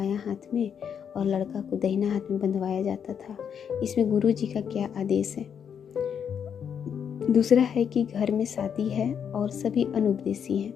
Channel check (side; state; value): right; quieter; 7.8 dB